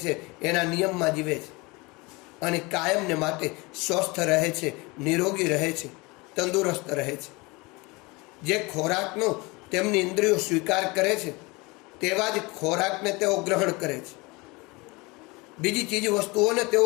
એના નિયમમાં જીવે છે અને કાયમને માટે સ્વસ્થ રહે છે, નિરોગી રહે છે, તંદુરસ્ત રહે છે. જે ખોરાકનો તેમની ઇન્દ્રિયો સ્વીકાર કરે છે તેવા જ ખોરાકને તેઓ ગ્રહણ કરે છે. બીજી ચીજ વસ્તુઓને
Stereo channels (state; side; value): quieter; right; 25.2 dB